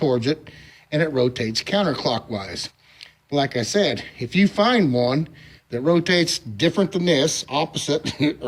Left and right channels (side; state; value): both; identical; correlation 1.00